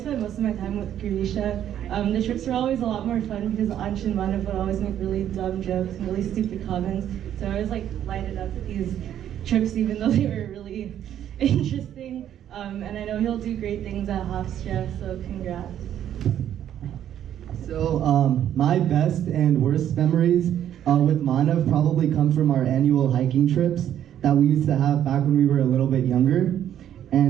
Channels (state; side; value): quieter; left; 10.6 dB